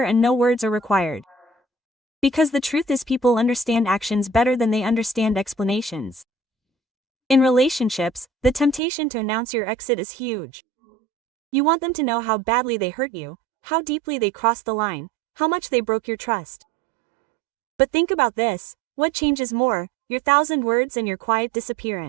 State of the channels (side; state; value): left; drops out; at 8.8 s